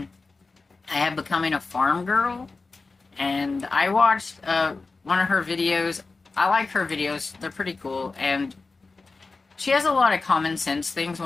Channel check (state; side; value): quieter; right; 3.9 dB